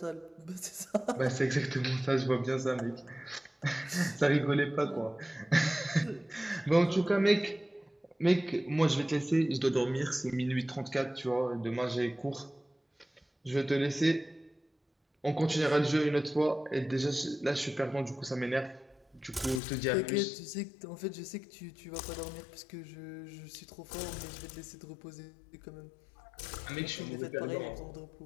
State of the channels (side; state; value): right; drops out; at 19.6 s